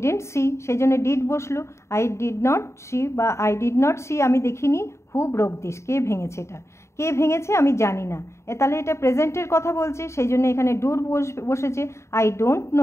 সি, সেই জন্য ডিড বসলো। আই ডিড নট সি বা আই ডিড নট সি, আমি দেখিনি। হু ব্রোক দিস, কে ভেঙেছে, এটা কে ভেঙেছে আমি জানি না, তাহলে এটা প্রেজেন্টের কথা বলছে, সেই জন্য এখানে ডুর বসেছে। I don't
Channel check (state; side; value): late; right; 0.13 ms